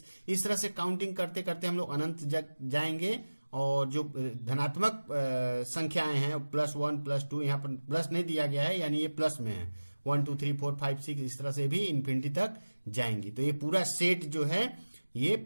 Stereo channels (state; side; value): inverted; both; correlation -1.00